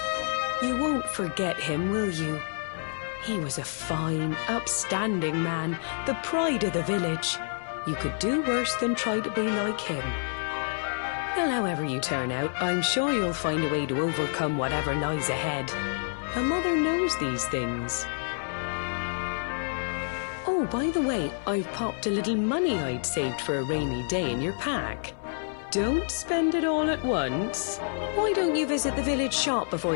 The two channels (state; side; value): silent; right; 56 dB below the other